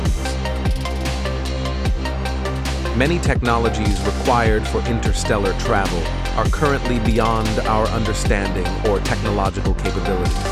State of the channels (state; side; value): identical; both; correlation 1.00